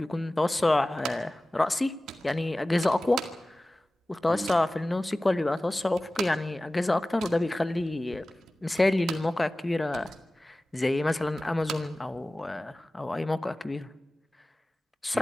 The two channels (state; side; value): normal; both; correlation 0.97